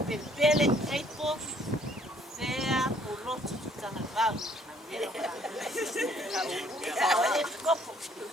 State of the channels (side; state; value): both; normal; correlation 0.62